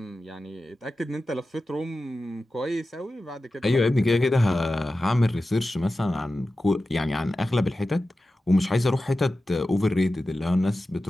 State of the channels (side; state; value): both; normal; correlation 0.94